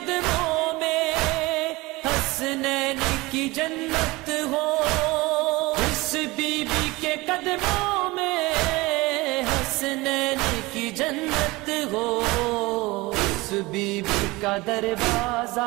میں حسنین کی جنت ہو، جس بی بی کے قدموں میں حسنین کی جنت ہو، اس بی بی کا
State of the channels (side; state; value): left; quieter; 22.2 dB